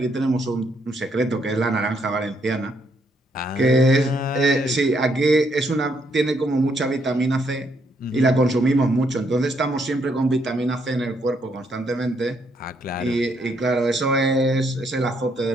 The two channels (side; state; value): both; normal; correlation 0.73